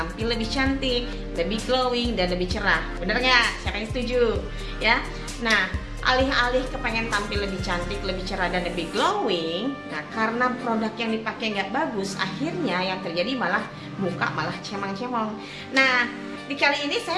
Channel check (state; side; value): identical; both; correlation 1.00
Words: lebih cantik, lebih glowing dan lebih cerah. Bener nggak? Siapa yang setuju? Ya. Nah, alih-alih kepengen tampil lebih cantik, lebih cerah dan lebih glowing, nah karena produk yang dipakai nggak bagus, akhirnya yang terjadi malah muka malah cemang-cemong. Nah, di kali ini